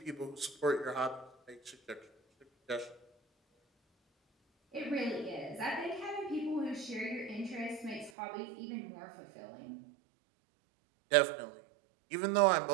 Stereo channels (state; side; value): drops out; left; at 8.1 s